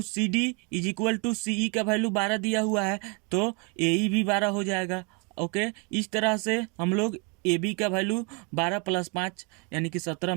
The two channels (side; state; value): left; quieter; 33.3 dB